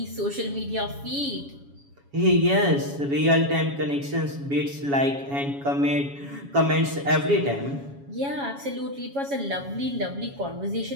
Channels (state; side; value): late; left; 7.2 ms